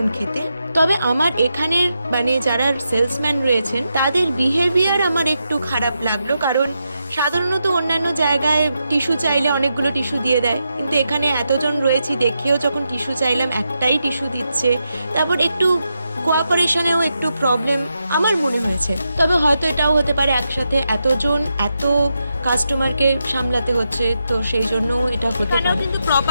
খেতে। তবে আমার এখানের মানে যারা সেলসম্যান রয়েছেন তাদের বিহেভিয়ার আমার একটু খারাপ লাগলো, কারণ সাধারণত অন্যান্য জায়গায় টিস্যু চাইলে অনেকগুলো টিস্যু দিয়ে দেয়, কিন্তু এখানে এতজন রয়েছি দেখেও যখন টিস্যু চাইলাম একটাই টিস্যু দিচ্ছে। তারপর একটু কোঅপারেশনেও একটু প্রবলেম আমার মনে হয়েছে। তবে হয়তো এটাও হতে পারে একসাথে এতজন এত কাস্টমারকে সামলাতে হচ্ছে, তো সেই জন্য এটা হতে পারে। কিন্তু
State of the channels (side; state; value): both; inverted; correlation -0.86